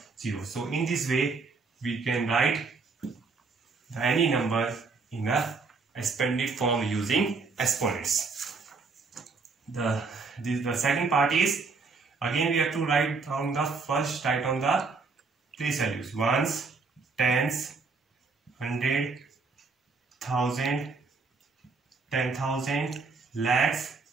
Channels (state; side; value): quieter; left; 4.4 dB